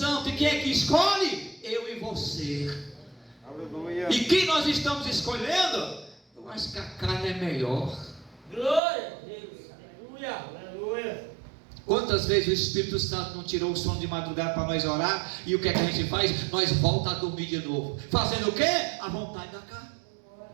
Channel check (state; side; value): drops out; left; at 8.8 s